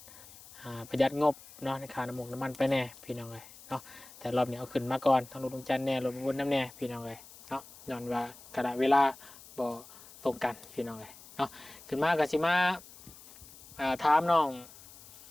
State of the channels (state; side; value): noise; left; hiss, 20 dB below the sound